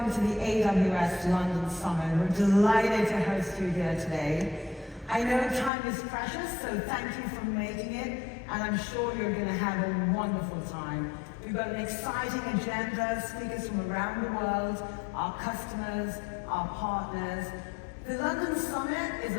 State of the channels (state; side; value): drops out; right; at 5.7 s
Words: to the AWS London Summit. We're delighted to host you here today. I know time is precious, so thank you for making it, and I'm sure you're going to have a wonderful time. We've got an exciting agenda, speakers from around the world, our customers, our partners. The London Summit is